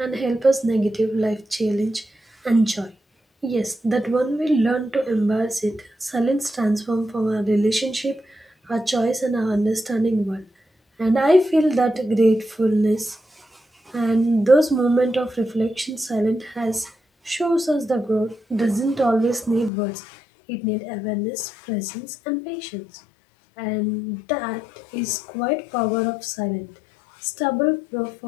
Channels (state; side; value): drops out; right; at 19.7 s